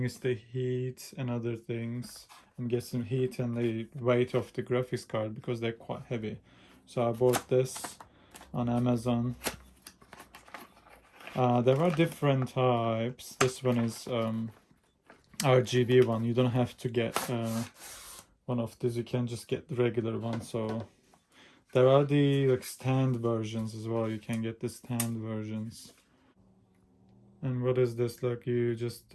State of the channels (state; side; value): identical; both; correlation 1.00